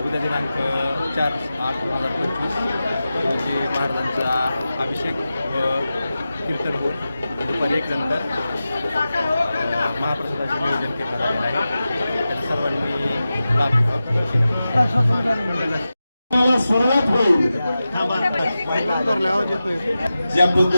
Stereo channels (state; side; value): inverted; both; correlation -0.93